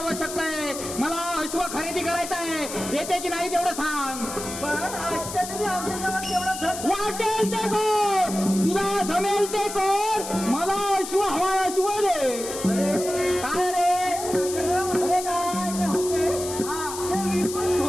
आहे. मला अश्व खरेदी करायचं आहे, देते की नाही तेवढं सांग. पण आजच्या तरी आमच्याजवळ तेवढं धन वाटेल ते कर, तुला जमेल ते कर, मला अश्व हवा, अश्व दे. काय रे? अरे काय?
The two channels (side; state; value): left; noise; hiss, 8 dB below the sound